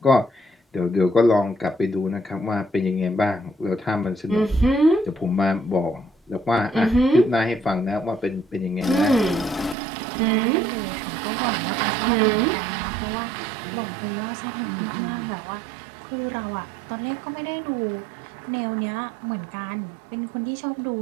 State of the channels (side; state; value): left; drops out; at 9.8 s